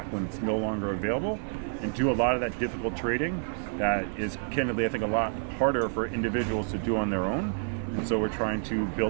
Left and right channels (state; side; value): silent; left; digital silence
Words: when it's no longer available, and do a lot of that difficult trading that is, candidly, I think, a lot harder for individuals to do on their own. And so we're trying to